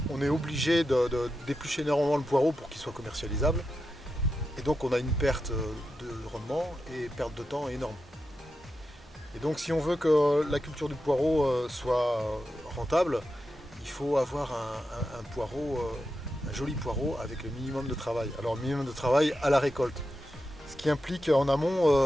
est obligé de d'éplucher énormément le poireau pour qu'il soit commercialisable. Et donc on a une perte de rendement et perte de temps énorme. Et donc si on veut que la culture du poireau soit rentable, il faut avoir un poireau, un joli poireau avec le minimum de travail. Alors le minimum de travail à la récolte, ce qui implique en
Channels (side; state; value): both; normal; correlation 0.89